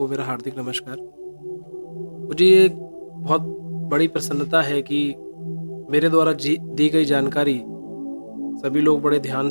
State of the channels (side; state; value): both; inverted; correlation -1.00